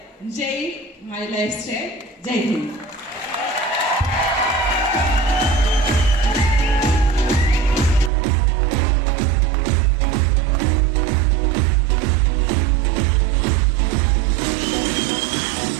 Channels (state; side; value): drops out; left; at 8.1 s